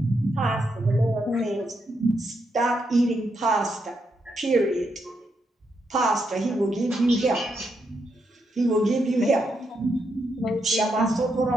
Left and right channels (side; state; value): both; normal; correlation 0.81